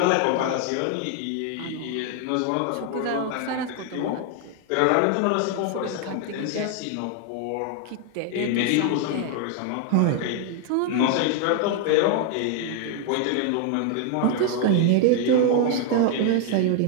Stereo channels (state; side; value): different; both; correlation 0.00